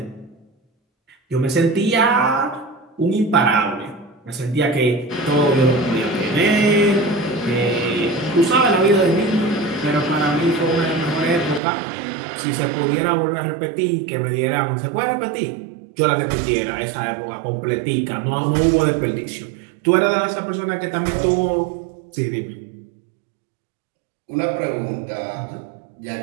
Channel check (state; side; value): drops out; left; at 11.6 s